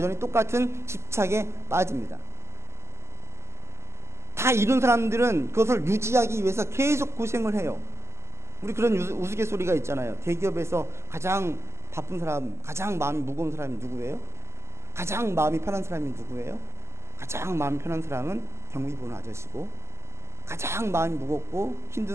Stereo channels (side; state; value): left; late; 0.13 ms